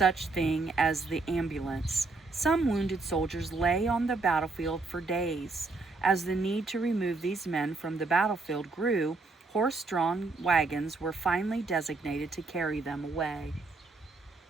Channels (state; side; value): quieter; left; 3.7 dB